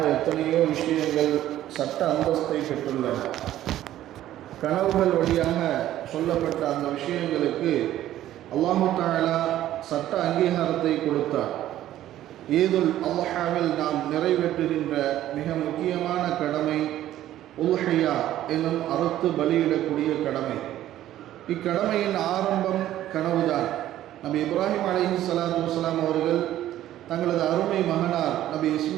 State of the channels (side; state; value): left; quieter; 13.1 dB